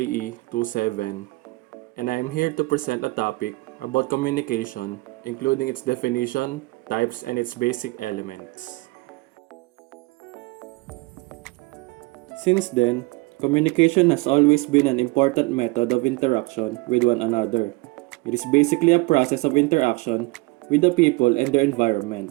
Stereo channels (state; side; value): quieter; left; 23.6 dB